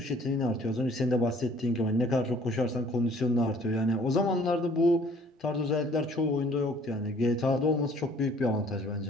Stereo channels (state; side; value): normal; both; correlation 0.56